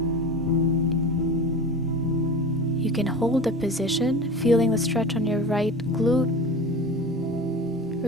You can hold the position, feeling the stretch on your right glute.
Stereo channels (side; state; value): both; normal; correlation 0.33